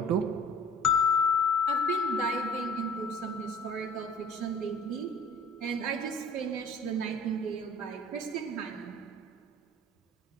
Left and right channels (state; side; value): normal; both; correlation 0.48